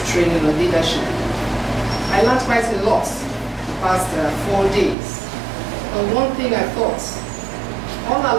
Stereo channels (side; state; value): left; drops out; at 5.0 s